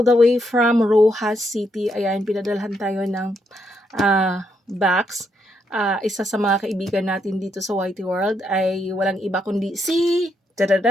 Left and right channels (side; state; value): both; normal; correlation 0.77